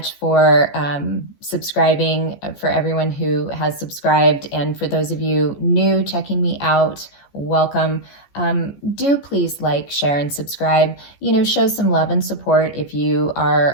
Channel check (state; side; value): late; right; 14 ms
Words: for subscribing, for everyone who has subscribed. And for those of you new checking me out, welcome. Do please like, share, and subscribe. Show some love and support if you